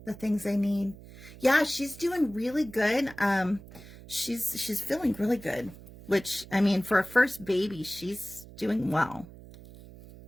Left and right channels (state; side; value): noise; right; hum, 18 dB below the sound